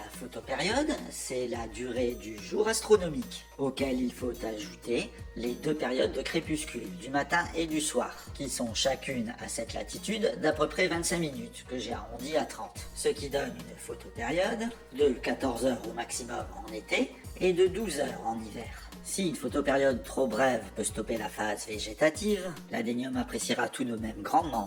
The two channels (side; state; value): both; identical; correlation 1.00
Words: photopériode, c'est la durée du jour astronomique, auquel il faut ajouter les deux périodes de crépuscule, du matin et du soir, qui sont chacune à cette latitude d'à peu près 25 minutes, que j'ai arrondi à 30, ce qui donne une photopériode de 14 heures au maximum en été et de 12 heures en hiver. Si une photopériode trop brève peut stopper la phase végétative, l'adénium appréciera tout de même grandement